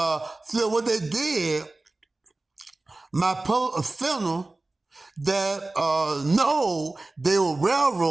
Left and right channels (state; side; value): quieter; left; 3.1 dB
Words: what they did, my funeral, that no, they were